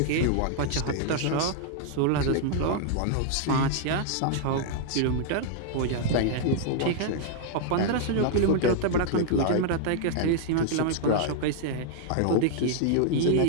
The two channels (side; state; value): both; different; correlation -0.01